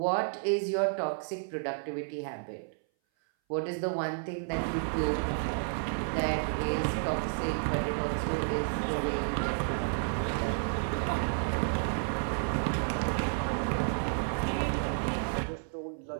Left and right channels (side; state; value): left; silent; 57 dB below the other